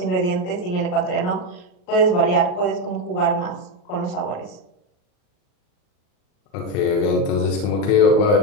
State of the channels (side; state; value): right; late; 39 ms